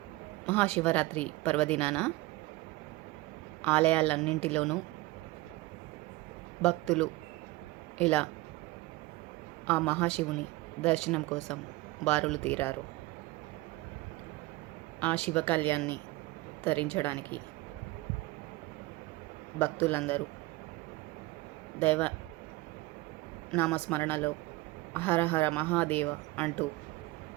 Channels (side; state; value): left; quieter; 20.0 dB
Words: Mahashivratri పర్వదినాన ఆలయాలన్నింటిలోనూ భక్తులు ఇలా ఆ మహాశివుని దర్శనం కోసం బారులు తీరారు. ఆ శివ కళ్యాణ్ణి తరించడానికి భక్తులందరూ దైవ నామస్మరణలో హర హర మహాదేవ అంటూ